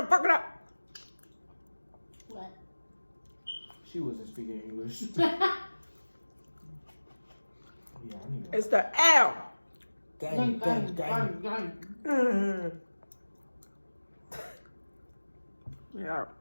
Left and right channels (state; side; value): inverted; both; correlation -1.00